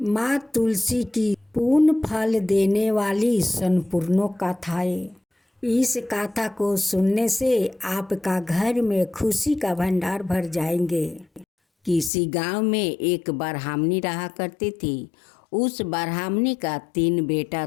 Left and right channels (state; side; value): drops out; right; at 12.1 s